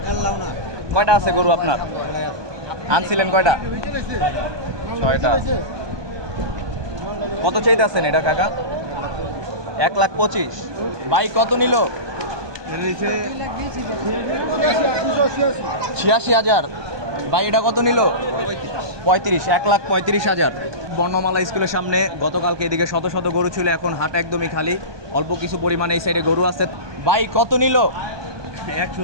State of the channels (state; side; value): late; left; 1.2 ms